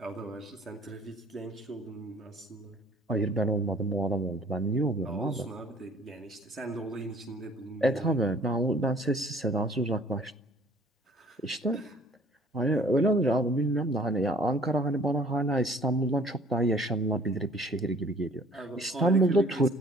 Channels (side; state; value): both; normal; correlation 0.55